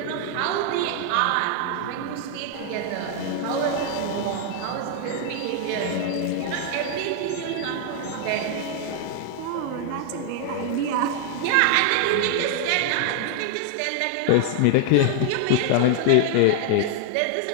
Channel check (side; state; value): both; different; correlation -0.01